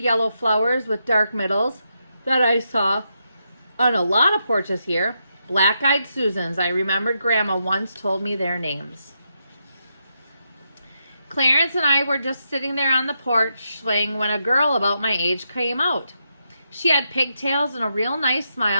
flowers with dark middles that I saw on a lot of porches here. Black-eyed Susans. I remembered Grandma once told me their names. Clarence and I were just sitting there on the porch swing when a girl about my age came out. She had pigtails and a real nice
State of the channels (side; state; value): both; inverted; correlation -0.83